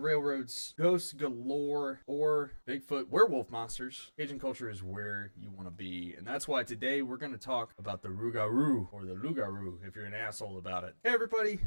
railroads, ghosts galore, or Bigfoot werewolf monsters, Cajun culture is where you want to be. And that's why today we're going to talk about the Rougarou, or the Lougarou, if you're an asshole about it. Hey everybody,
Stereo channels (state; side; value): inverted; both; correlation -1.00